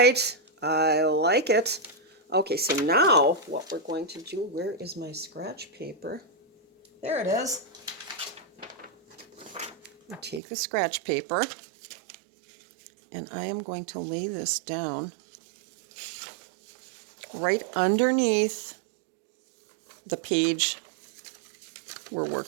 I like it. Okay, so now what we're going to do, where is my scratch paper? There it is. I'll take the scratch paper, and I am going to lay this down right underneath the page we're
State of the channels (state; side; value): drops out; left; at 10.4 s